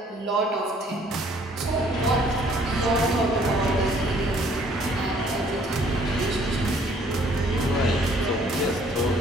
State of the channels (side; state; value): both; normal; correlation 0.60